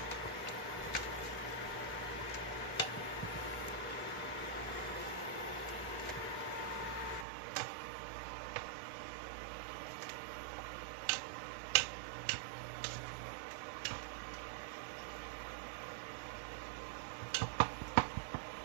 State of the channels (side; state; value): left; drops out; at 7.2 s